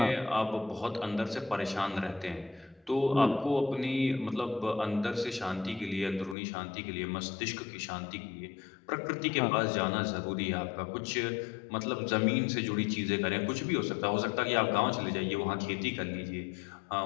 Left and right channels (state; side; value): drops out; right; at 6.4 s